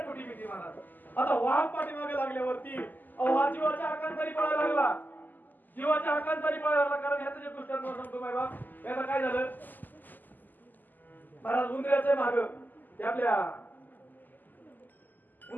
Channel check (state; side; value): late; right; 0.086 ms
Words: मोठी भीती महाराज आता वाघ पाठी मागे लागल्यावरती हा जीवाच्या आकांतारी पळायला लागला जीवाच्या आकांतारी पळायला लागला कारण ह्याचं जे दृष्टांत सांगतो माय बाप याला काय झालं महाराज उंदराच्या माग ते आपल्या